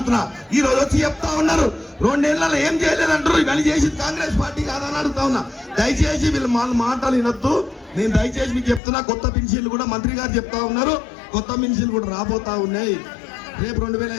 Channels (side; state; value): right; drops out; at 8.8 s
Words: ఈ రోజు వచ్చి చెప్తా ఉన్నారు 2 ఏళ్లలో ఏం చేయలేదంటారు. ఇవన్నీ చేసింది కాంగ్రెస్ పార్టీ కాదని అడుగుతా ఉన్నా. దయచేసి వీళ్ళు మాటలు వినొద్దు. నేను దయచేసి మీకు చెప్తున్నా, కొత్త పెన్షన్లు కూడా మంత్రి గారు చెప్తా ఉన్నారు. కొత్త పెన్షన్లు కూడా రాబోతా ఉన్నాయి. రేపు